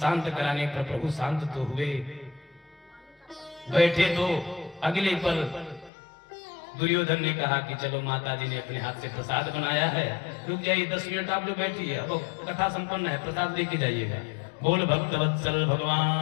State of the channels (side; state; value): right; drops out; at 5.9 s